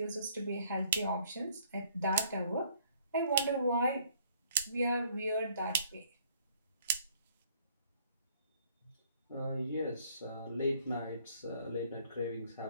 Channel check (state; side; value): inverted; both; correlation -0.62